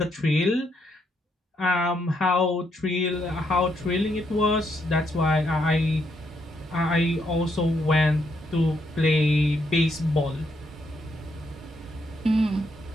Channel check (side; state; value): both; normal; correlation 0.76